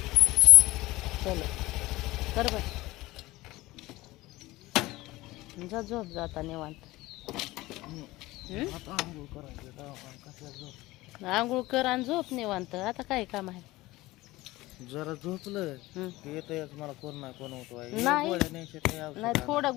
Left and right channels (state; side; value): quieter; right; 19.1 dB